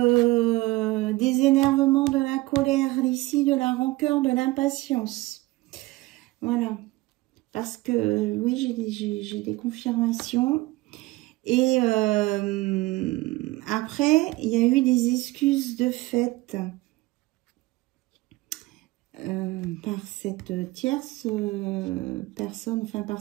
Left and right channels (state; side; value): quieter; left; 20.1 dB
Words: des énervements, de la colère ici, de la rancœur, de l'impatience. Voilà. Parce que, oui, j'ai des confirmations. Et après, il y a eu des excuses de fait par cette tierce personne, enfin par